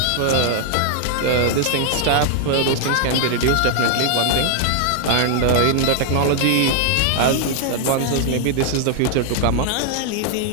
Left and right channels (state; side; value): different; both; correlation 0.00